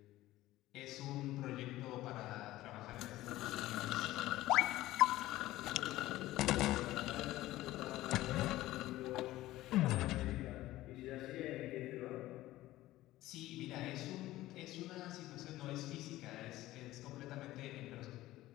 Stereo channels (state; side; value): quieter; right; 16.3 dB